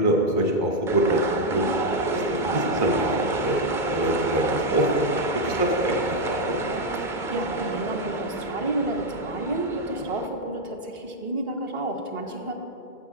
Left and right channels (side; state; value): right; late; 2.2 ms